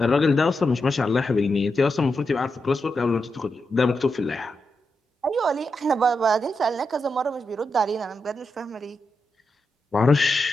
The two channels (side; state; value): both; normal; correlation 0.86